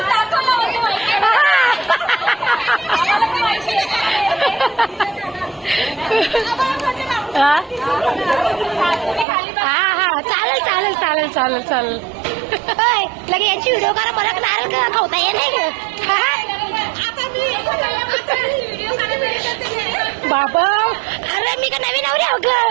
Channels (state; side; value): drops out; left; at 9.2 s